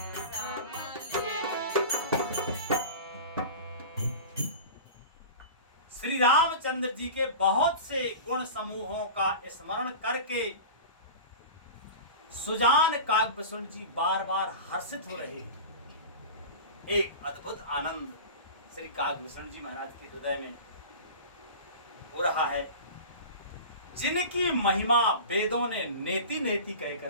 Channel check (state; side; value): inverted; both; correlation -0.34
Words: श्री रामचंद्र जी के बहुत से गुण समूहों का स्मरण करके सुजान काकभूषण जी बार बार हर्षित हो रहे हैं। एक अद्भुत आनंद श्री काकभूषण जी महाराज के हृदय में हो रहा है, जिनकी महिमा वेदों ने नेति नेति